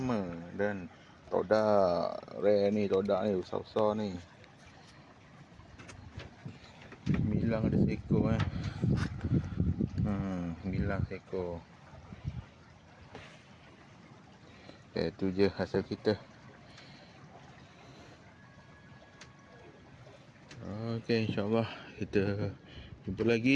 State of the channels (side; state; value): both; identical; correlation 1.00